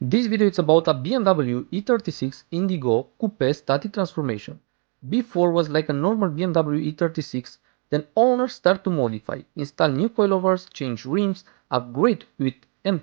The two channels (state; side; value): quieter; left; 38.9 dB